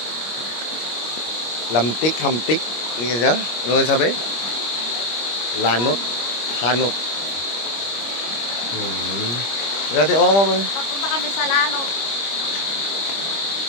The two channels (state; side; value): late; right; 25 ms